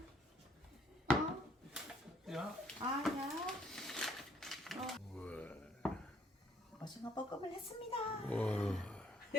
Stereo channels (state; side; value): normal; both; correlation 0.64